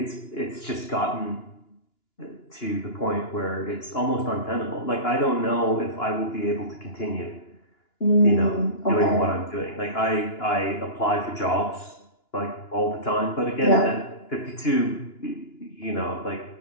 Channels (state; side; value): late; right; 2.9 ms